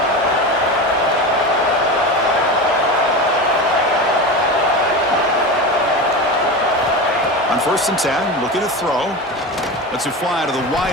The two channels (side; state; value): both; normal; correlation 0.24